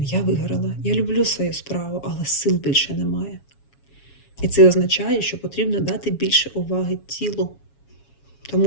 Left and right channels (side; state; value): right; late; 7.2 ms